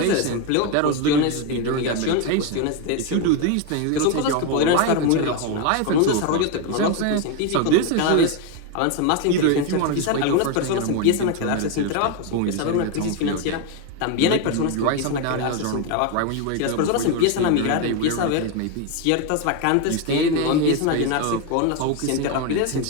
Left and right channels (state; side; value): different; both; correlation 0.02